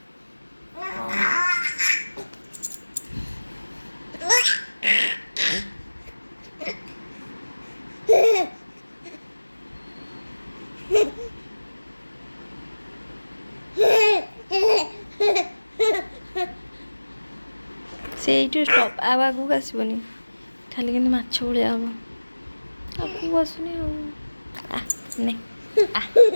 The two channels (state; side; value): inverted; both; correlation -1.00